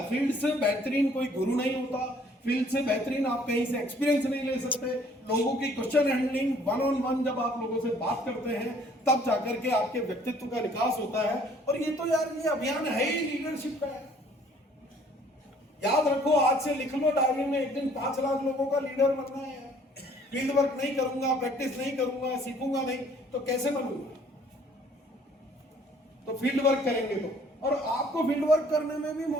फील्ड से बेहतरीन कोई गुरु नहीं होता, फील्ड से बेहतरीन आप कहीं से एक्सपीरियंस नहीं ले सकते। लोगों की question handling, one on one जब आप लोगों से बात करते हैं तब जाकर के आपके व्यक्तित्व का विकास होता है। और ये तो यार ये अभियान है ही लीडरशिप का है। याद रखो, आज से लिख लो डायरी में, एक दिन 5 लाख लोगों का लीडर बनना है। फील्ड वर्क नहीं करूंगा, प्रैक्टिस नहीं करूंगा, सीखूंगा नहीं तो कैसे बनूंगा? तो फील्ड वर्क करेंगे तो, और आपको फील्ड वर्क करने में भी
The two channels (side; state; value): both; normal; correlation 0.58